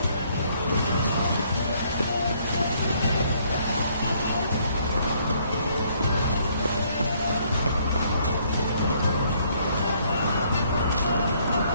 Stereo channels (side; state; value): both; inverted; correlation -0.66